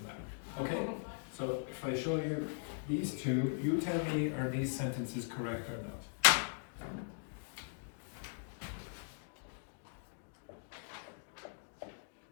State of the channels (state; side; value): silent; right; digital silence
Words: matter. Okay, so if I show you these two, you tell me are these sentences correct or not.